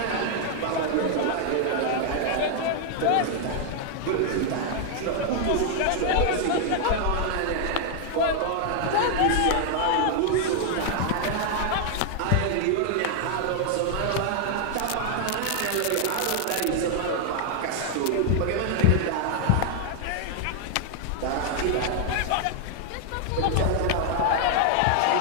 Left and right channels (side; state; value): both; different; correlation 0.00